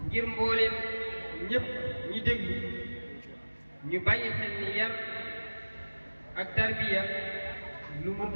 ngir mbooleem ñëpp ñi déglu ñu bàyyi xel ni yar ak tarbiya lu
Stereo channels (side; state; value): both; inverted; correlation -1.00